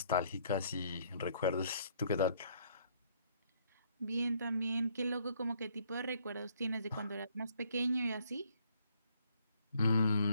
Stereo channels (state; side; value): inverted; both; correlation -0.66